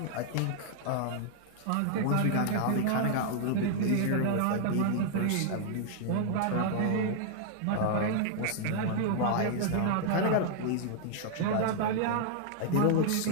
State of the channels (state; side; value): different; both; correlation 0.00